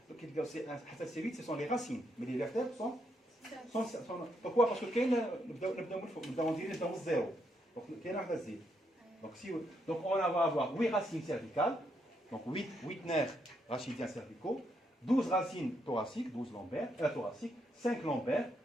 c'est 8, ce sont les racines, mais les vertèbres sont pourquoi? Parce que nous avons dit 0. Donc il y a un zéro. Donc on va avoir 8 racines cervicales, donc 8 nerfs rachidiens cervicaux, 12 racines thoraciques, 12 lombaires, thoraciques, 5 lombaires,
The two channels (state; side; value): normal; both; correlation 0.77